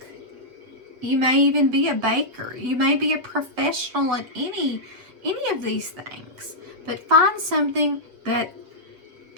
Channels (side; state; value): left; late; 8.0 ms